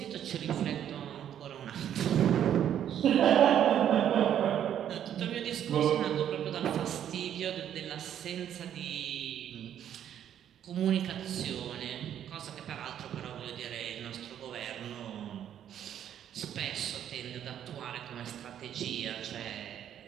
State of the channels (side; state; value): left; quieter; 10.0 dB